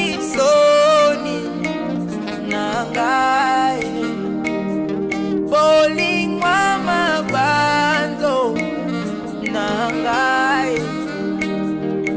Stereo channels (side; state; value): both; identical; correlation 1.00